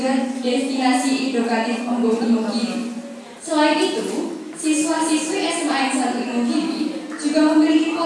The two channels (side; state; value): both; identical; correlation 1.00